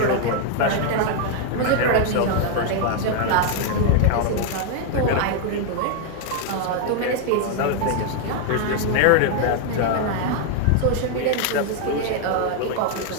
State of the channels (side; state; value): both; different; correlation 0.00